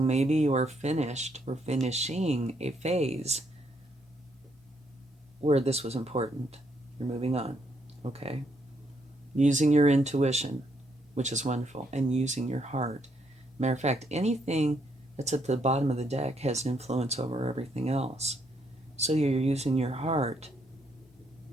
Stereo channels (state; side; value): normal; both; correlation 0.74